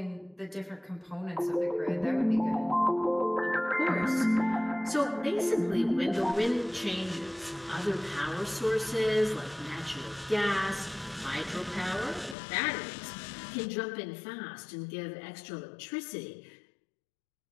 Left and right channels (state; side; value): drops out; right; at 12.4 s